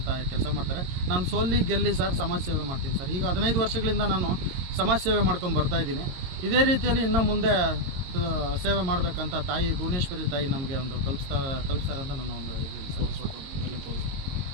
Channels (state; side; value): late; left; 22 ms